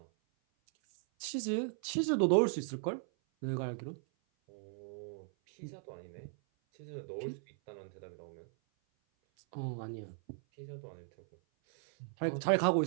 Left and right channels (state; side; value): silent; left; 53 dB below the other